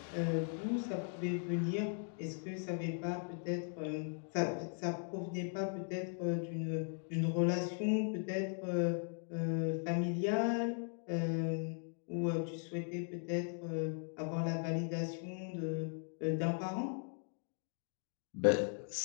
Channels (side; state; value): right; silent; 52 dB below the other